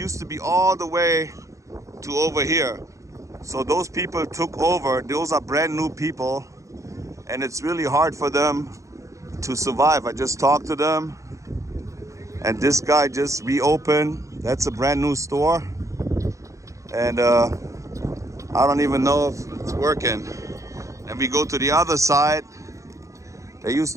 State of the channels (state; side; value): late; left; 0.15 ms